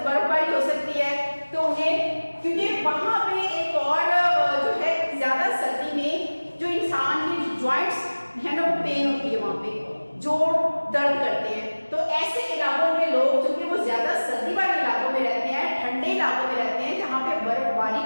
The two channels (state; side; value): inverted; both; correlation -1.00